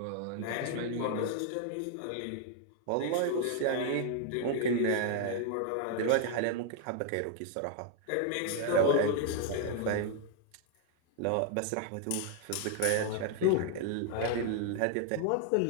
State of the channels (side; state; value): both; different; correlation 0.00